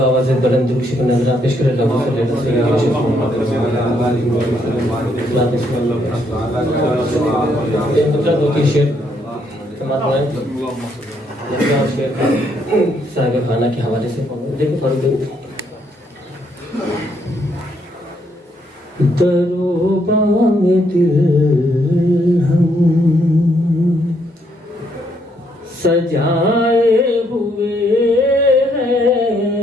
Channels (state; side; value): normal; both; correlation 0.73